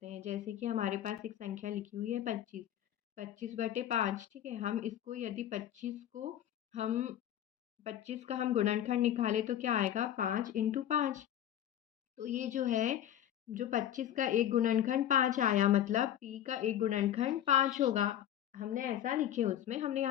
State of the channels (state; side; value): quieter; right; 11.2 dB